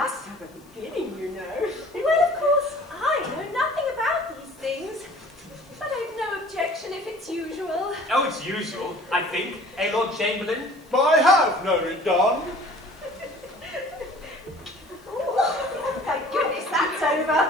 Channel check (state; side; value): noise; left; hiss, 30 dB below the sound